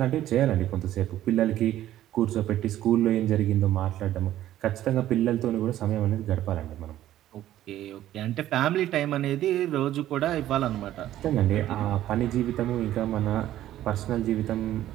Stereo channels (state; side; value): quieter; left; 13.1 dB